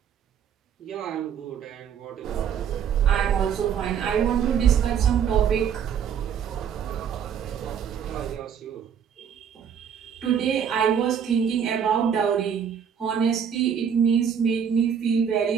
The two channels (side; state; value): left; quieter; 7.9 dB